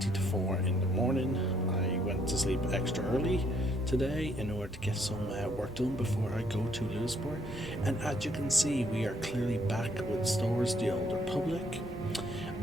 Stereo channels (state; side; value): normal; both; correlation 0.68